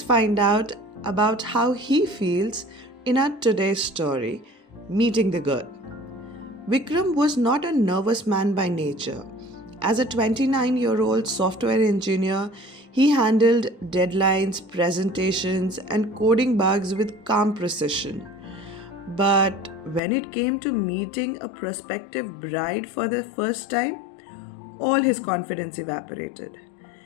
find out about how he feels in our today's story, Meeting the Girl. Vikram was not a nervous man by nature. As a 29-year-old software engineer, he handled deadlines, presentations, and coding bugs with calm precision. But when it came to meeting a prospective bride for the first time, all his confidence evaporated.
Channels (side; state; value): right; drops out; at 20.0 s